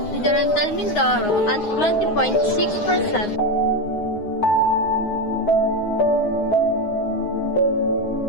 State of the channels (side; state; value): right; late; 9.6 ms